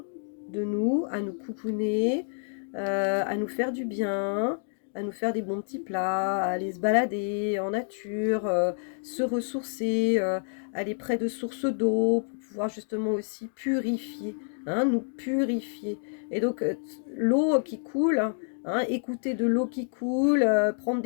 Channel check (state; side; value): silent; right; digital silence